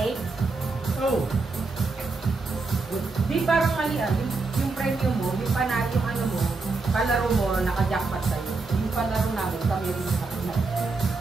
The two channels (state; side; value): quieter; left; 3.9 dB